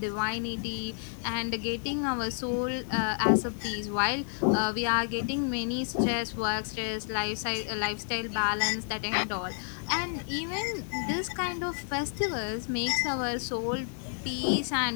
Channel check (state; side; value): silent; right; 58 dB below the other